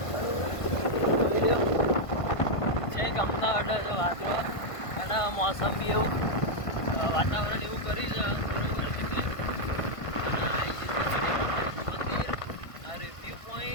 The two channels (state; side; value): late; right; 1.5 ms